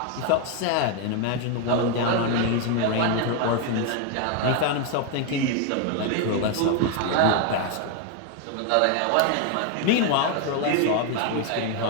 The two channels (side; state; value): both; different; correlation 0.01